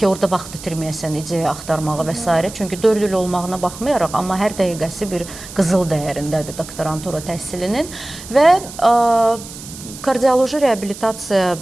orada vaxt itirməyəsən ideya axtarmağa və s. Çünki 4 il olmağına baxmayaraq, amma hər dəqiqəsi bir qızıl dəyərindədir doktorantura təhsilinin və kardioloji reabilitasiya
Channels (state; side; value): noise; right; hiss, 14 dB below the sound